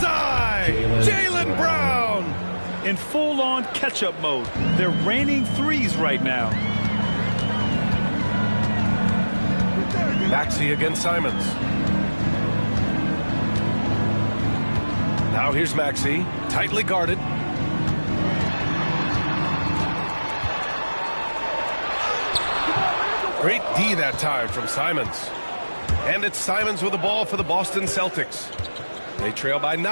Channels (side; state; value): both; inverted; correlation -1.00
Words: Jaylen Brown! In full-on catch-up mode. They're raining threes right now. Maxey against Simons. Now here's Maxey, tightly guarded. Great D that time from Simons. And it's Simons with the ball for the Boston Celtics. They trail by